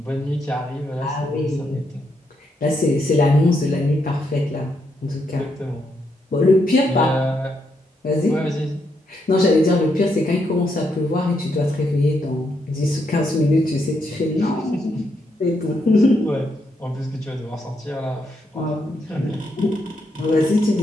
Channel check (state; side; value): normal; both; correlation 0.78